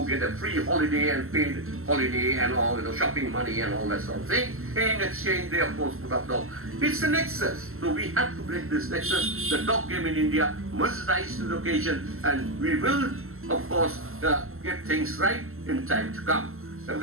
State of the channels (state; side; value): late; left; 0.62 ms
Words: get a free holiday and paid holiday and all shopping money and all that sort of thing. In exchange, they of course put up dog. It's a nexus, so we have to break this nexus. The dog game in India must rise to the occasion, and we will of course get things right in time to come,